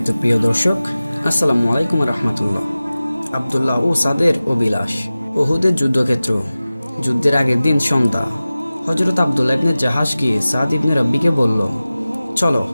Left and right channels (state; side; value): inverted; both; correlation -0.97